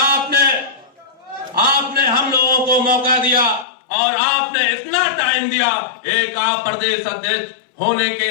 हम लोगों को मौका दिया और आपने इतना टाइम दिया। एक आप प्रदेश अध्यक्ष होने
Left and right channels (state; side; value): drops out; right; at 3.7 s